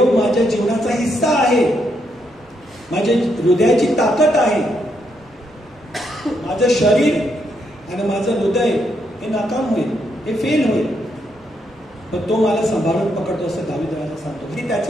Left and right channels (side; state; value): both; normal; correlation 0.78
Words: माझ्या जीवनाचा हिस्सा आहे, माझ्या हृदयाची ताकद आहे. माझं शरीर आणि माझं हृदय हे नाकाम होईल, हे फेल होईल, पण तो मला सांभाळून पकडतो, असं दावीद राजा सांगतो. हे